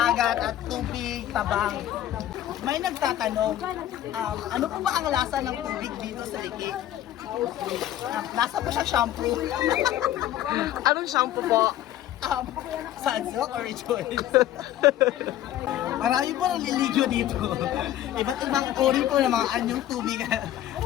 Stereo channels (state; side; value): quieter; right; 12.6 dB